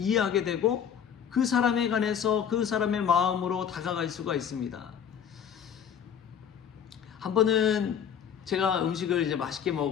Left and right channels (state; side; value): quieter; right; 8.2 dB